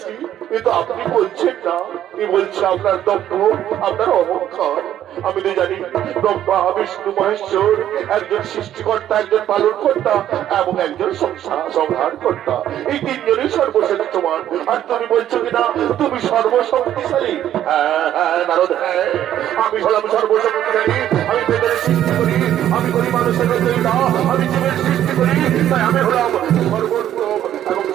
এ তো আপনি বলছেন না, এ বলছে আপনার দম্ভ, আপনার অহংকার। আমি তো জানি ব্রহ্মা বিষ্ণু মহেশ্বর একজন সৃষ্টিকর্তা, একজন পালন কর্তা এবং একজন সংহার কর্তা। এই তিনজনই সর্বশ্রেষ্ঠমান। আর তুমি বলছো কিনা তুমি সর্বশক্তিশালী? হ্যাঁ হ্যাঁ নারদ, হ্যাঁ আমি হলাম সর্বশক্তিশালী। আমি বেদের সৃষ্টি করি, আমি করি মানুষের রচয়িতা, আমি জীবের সৃষ্টি করি। তাই আমি হলাম সর্বোত্তম এবং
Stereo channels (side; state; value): left; quieter; 11.4 dB